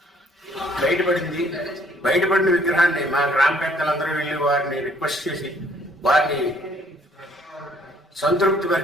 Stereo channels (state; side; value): normal; both; correlation 0.63